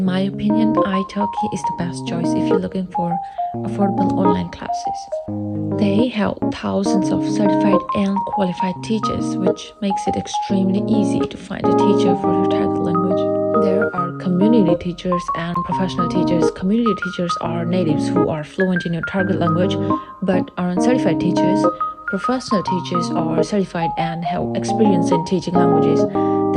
my opinion, italki is the best choice if you're looking for affordable online classes. They have thousands of certified and qualified teachers, which makes it extremely easy to find a teacher for your target language. There are community teachers and professional teachers. Community teachers are natives who are fluent in your target language but aren't certified teachers. Professional teachers are certified and have experience in teaching languages.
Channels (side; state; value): both; identical; correlation 1.00